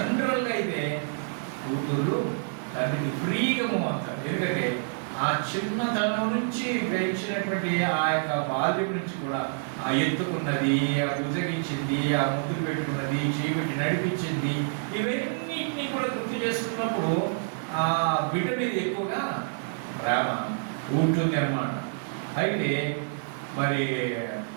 అయితే కూతురు తండ్రికి ఫ్రీగా అవుతారు. ఎందుకంటే ఆ చిన్నతనం నుంచి పెంచినటువంటి ఆ యొక్క బాల్యం నుంచి కూడా ఆ ఎత్తుకున్నది, ఆ బుజగించింది, ఆ ముద్దులు పెట్టుకున్నది, చేపెట్టి నడిపించింది, ఇవన్నిటినీ కూడా గుర్తు చేసుకున్నప్పుడు ఆ బిడ్డ మీద ఎక్కువగా ప్రేమ ఉంటుంది అన్నమాట. అయితే మరి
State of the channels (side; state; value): left; silent; digital silence